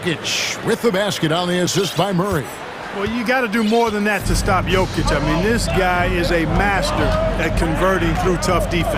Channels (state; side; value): identical; both; correlation 1.00